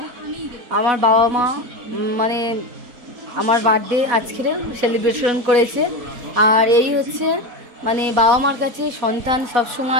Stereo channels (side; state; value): left; late; 4.1 ms